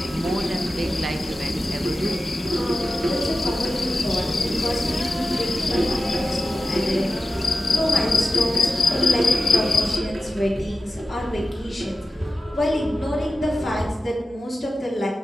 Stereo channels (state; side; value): normal; both; correlation 0.92